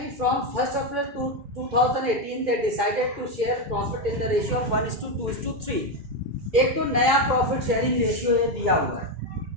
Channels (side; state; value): left; late; 2.4 ms